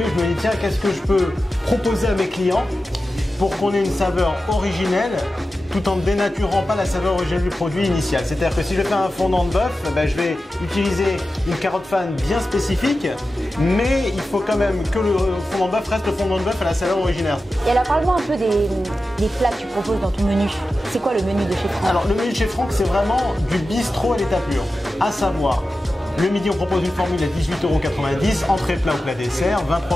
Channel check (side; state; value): both; normal; correlation 0.93